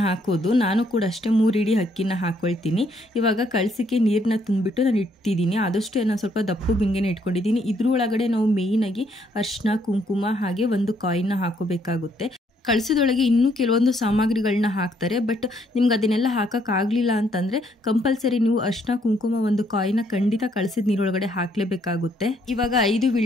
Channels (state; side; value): normal; both; correlation 0.70